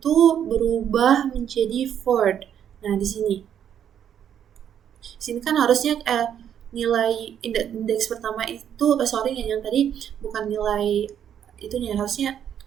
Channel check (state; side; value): quieter; left; 9.3 dB